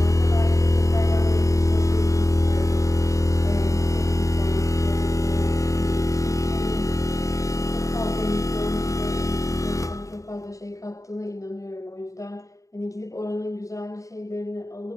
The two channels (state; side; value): late; right; 0.16 ms